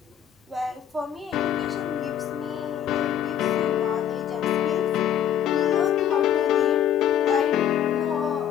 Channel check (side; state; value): right; quieter; 9.9 dB